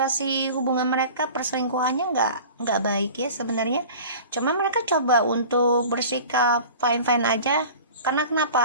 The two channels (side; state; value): both; inverted; correlation -0.40